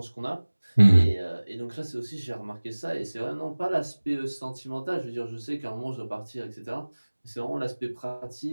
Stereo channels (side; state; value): both; inverted; correlation -1.00